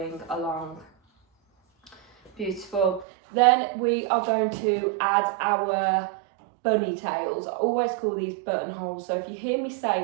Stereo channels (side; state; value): left; drops out; at 3.1 s